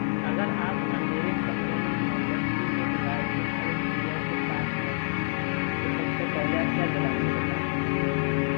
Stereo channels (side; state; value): right; silent; digital silence